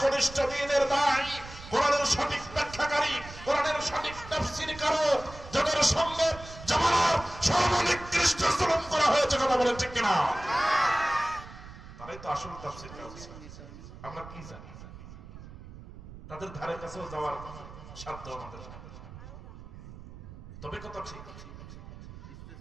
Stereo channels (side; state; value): right; noise; rumble, 15 dB below the sound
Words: কনিষ্ঠ দিনের দায়, কোরআনের সঠিক ব্যাখ্যাকারী, কোরআনের সঠিক তাফসীরকারক, যাদের সঙ্গে জামানার সর্বনিকৃষ্ট জুলুম করা হয়েছে, কথা বলেন ঠিক কিনা? তারাই তো আসল তাফসীরকারক। আমরা কি জানি? তাদের ধারে কাছেও যাওয়ার সাধ্য আমাদের। তবে কথা ঠিক,